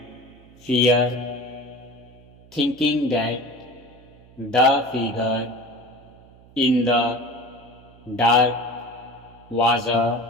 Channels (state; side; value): noise; right; hum, 25 dB below the sound